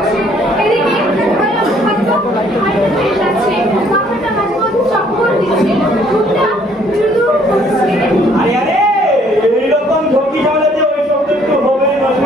আরে আরে এইরকম ঝুঁকি ঝামেলাতে ওই শব্দ একটু হবে না।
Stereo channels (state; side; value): normal; both; correlation 0.62